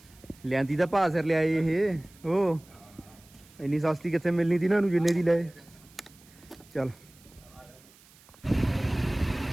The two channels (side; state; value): right; noise; hiss, 26 dB below the sound